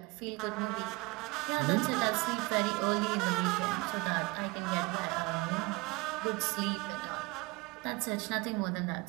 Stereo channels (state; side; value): quieter; left; 24.8 dB